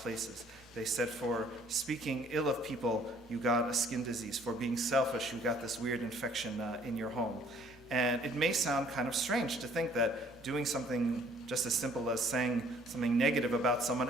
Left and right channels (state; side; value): normal; both; correlation 0.59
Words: They said for speaking ill of people, you got a skin disease. For being selfish, you got this weird infection in your home. And it may sound kind of strange to think that doing something just as simple as saying something negative about someone